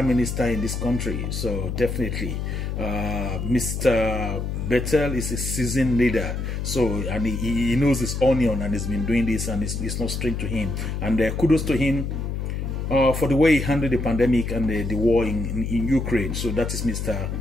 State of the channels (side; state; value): left; noise; hum, 3 dB below the sound